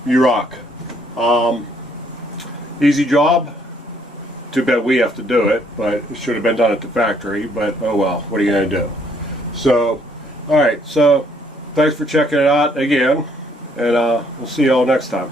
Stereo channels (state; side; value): normal; both; correlation 0.67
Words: You rock. Easy job. Too bad we have to do it, but it should have been done at the factory, but oh well, what are you going to do? So, alright, so thanks for checking it out again, and we'll see you all next time.